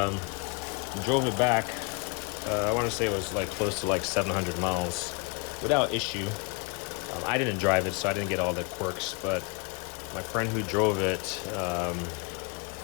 Drove it back. I want to say it was like close to like 700 miles without issue. I didn't drive it, so I didn't get all the quirks, but my friend who drove it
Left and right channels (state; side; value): quieter; right; 29.6 dB